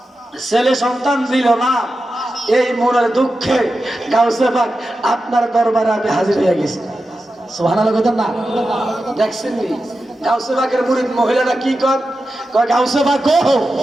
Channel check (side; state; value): both; normal; correlation 0.91